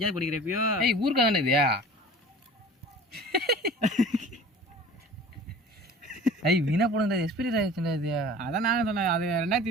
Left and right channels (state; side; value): normal; both; correlation 0.43